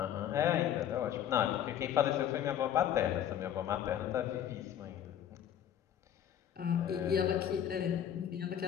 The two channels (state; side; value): quieter; right; 10.1 dB